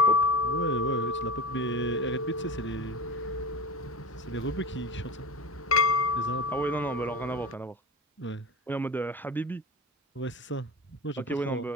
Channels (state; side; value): normal; both; correlation 0.28